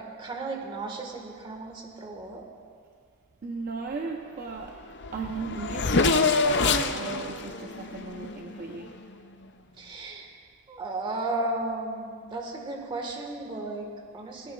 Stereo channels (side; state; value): both; normal; correlation -0.01